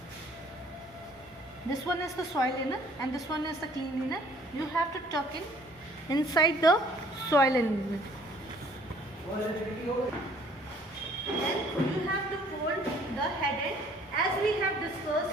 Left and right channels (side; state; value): both; normal; correlation 0.58